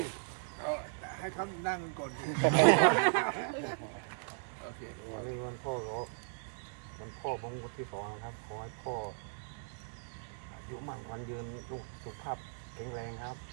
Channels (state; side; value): silent; left; digital silence